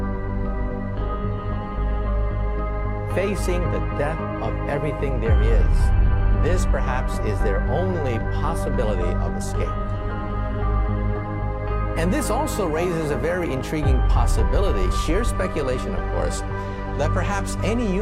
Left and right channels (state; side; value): identical; both; correlation 1.00